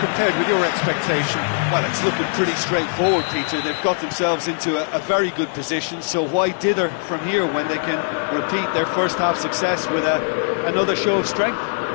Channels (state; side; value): silent; right; 63 dB below the other